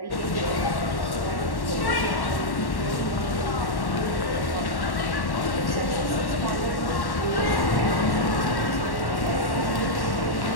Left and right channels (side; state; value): right; late; 1.1 ms